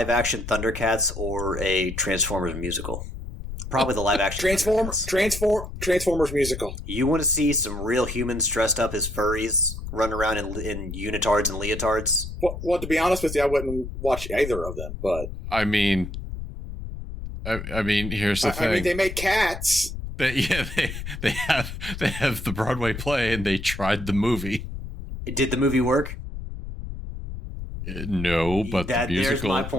Thundercats or a Transformers musical. Probably the live-action Transformers musical. You want to see some real humans dressed up as furries run around in unitards and leotards? Well, to be honest with you, I wouldn't watch either of them. But I mean, here's the thing. I mean, they make cats. They have the Broadway play, and they tried the movie. Did the movie work? No, but the musical, my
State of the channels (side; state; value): left; noise; rumble, 8 dB below the sound